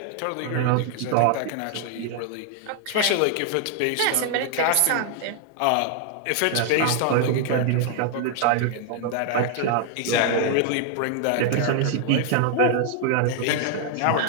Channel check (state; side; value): different; both; correlation 0.00